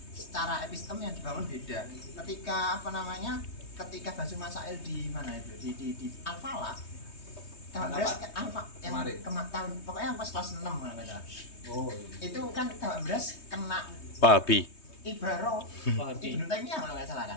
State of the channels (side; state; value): right; late; 3.2 ms